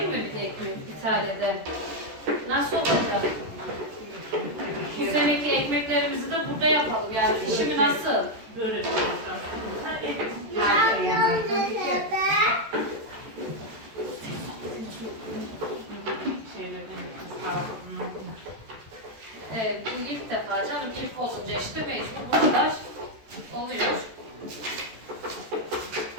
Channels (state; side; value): late; left; 14 ms